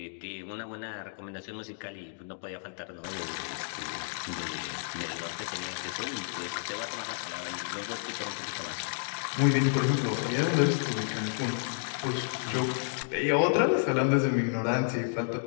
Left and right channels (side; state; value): right; silent; digital silence